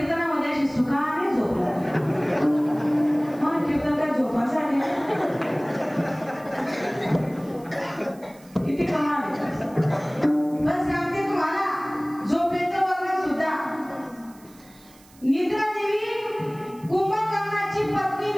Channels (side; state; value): right; noise; hiss, 26 dB below the sound